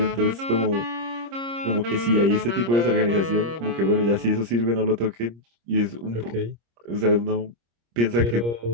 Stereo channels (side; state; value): left; late; 26 ms